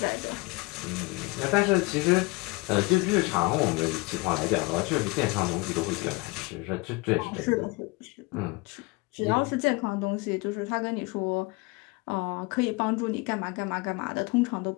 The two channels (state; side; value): quieter; right; 25.4 dB